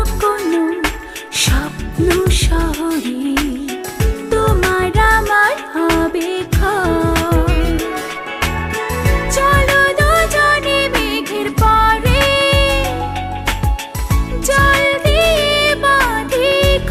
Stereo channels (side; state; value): both; identical; correlation 1.00